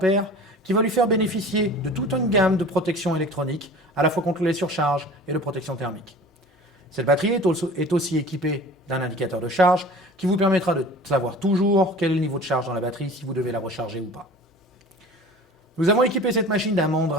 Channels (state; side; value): normal; both; correlation 0.42